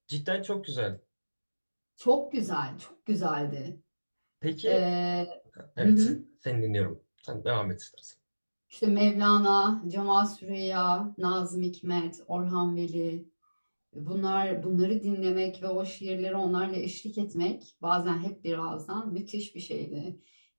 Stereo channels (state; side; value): inverted; both; correlation -1.00